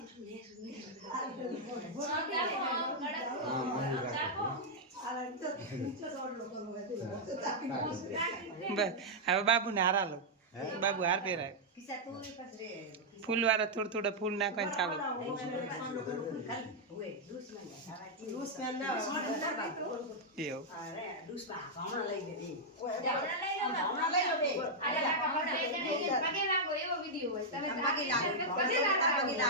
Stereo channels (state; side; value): normal; both; correlation -0.05